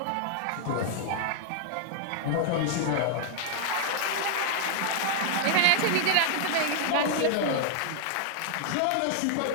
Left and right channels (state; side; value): different; both; correlation 0.00